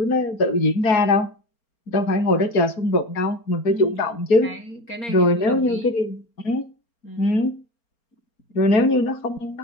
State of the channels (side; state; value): right; late; 4.3 ms